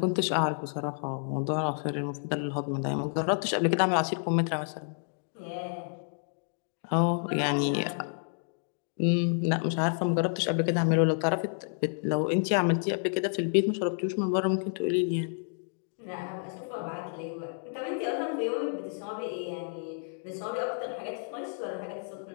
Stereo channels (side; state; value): right; silent; digital silence